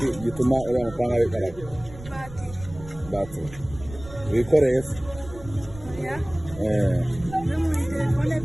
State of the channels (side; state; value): right; noise; rumble, 16 dB below the sound